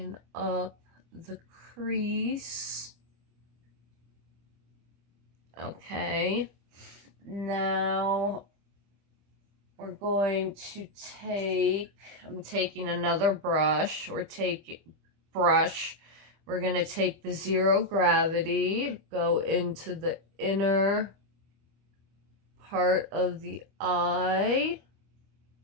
up the crease. Okay, now we're going to I'm taking another brush. We're going to take the Zero Gravity, go into the inner part of the eye,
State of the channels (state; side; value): late; left; 25 ms